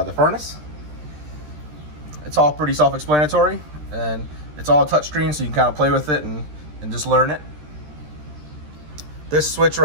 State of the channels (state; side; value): late; left; 13 ms